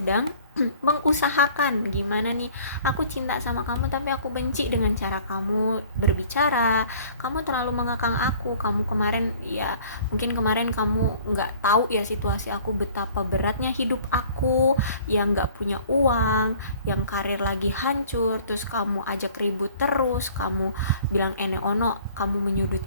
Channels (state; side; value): inverted; both; correlation -0.51